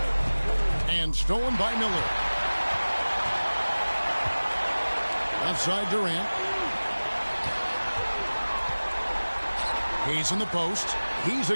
And stolen by Miller. Left side Durant. He's in the post. He's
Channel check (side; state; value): both; inverted; correlation -1.00